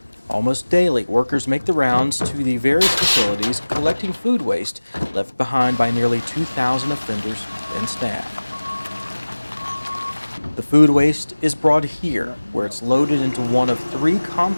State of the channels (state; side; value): inverted; both; correlation -1.00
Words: Almost daily, workers make the rounds to the various facilities collecting food waste left behind by nearly 2,000 offenders and staff. The food waste is brought here, where it's loaded into one of 3